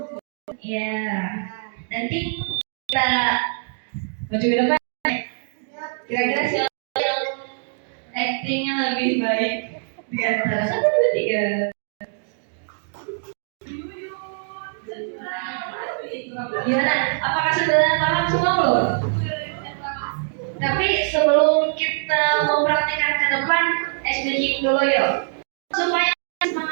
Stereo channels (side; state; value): left; silent; 63 dB below the other